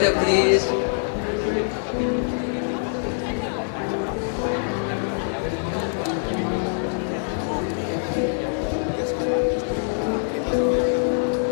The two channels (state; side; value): silent; right; digital silence